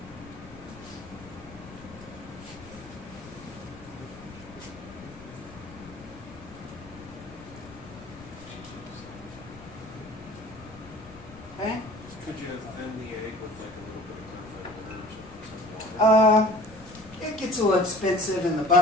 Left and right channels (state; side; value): noise; left; rumble, 18 dB below the sound